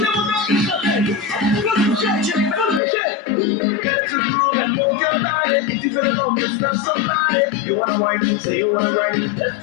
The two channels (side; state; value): right; drops out; at 2.8 s